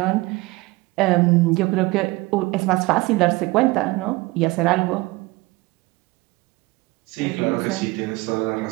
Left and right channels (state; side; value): quieter; left; 21.9 dB